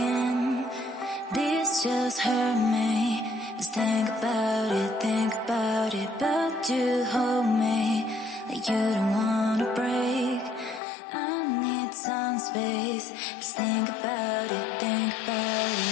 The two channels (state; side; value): drops out; right; at 10.8 s